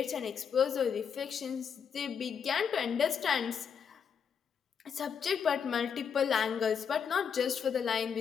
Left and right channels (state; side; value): quieter; right; 7.1 dB